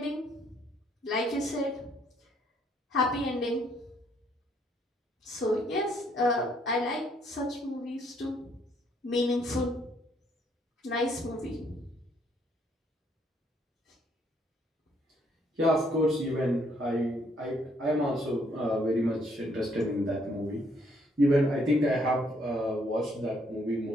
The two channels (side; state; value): both; normal; correlation 0.68